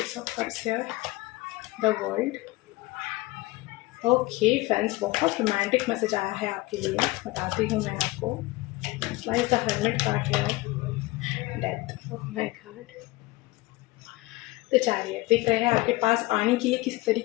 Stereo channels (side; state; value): right; quieter; 20.9 dB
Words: of Cups here? The World. Okay friends, बहुत रोमांटिक मैसेज आया है आपके लिए, बताती हूँ मैं आपको। Why is the Hermit card here? Death. Oh my God. तो चैरियट दिख रहे हैं आपके पास आने के लिए किस